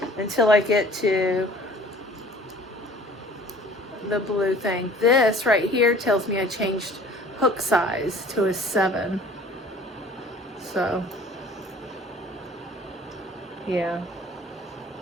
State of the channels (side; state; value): both; normal; correlation 0.49